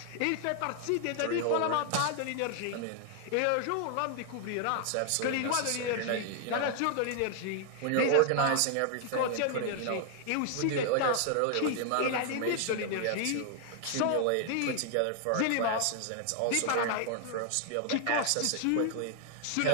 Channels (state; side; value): different; both; correlation 0.00